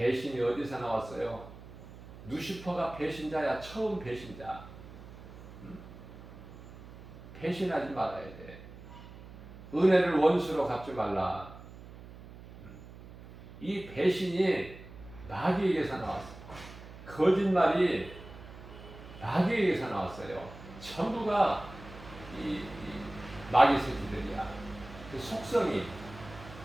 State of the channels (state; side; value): noise; right; hum, 16 dB below the sound